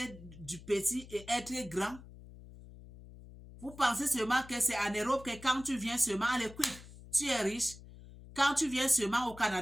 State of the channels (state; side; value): noise; left; hum, 18 dB below the sound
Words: du petit et être grand. Vous pensez seulement que c'est en Europe que quand tu viens seulement à l'équipe, tu es riche. Quand tu viens seulement au